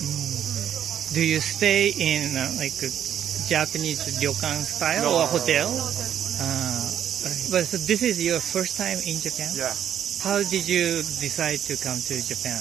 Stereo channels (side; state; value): left; quieter; 9.8 dB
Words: Do you stay in like a Japanese ryokan style or hotel? But so this is your first time in Japan? Yeah. How did you decide to come to Japan?